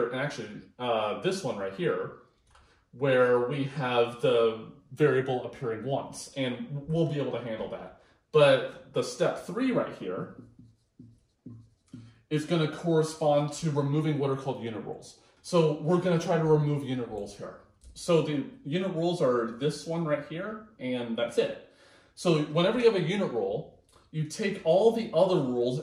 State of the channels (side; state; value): both; identical; correlation 1.00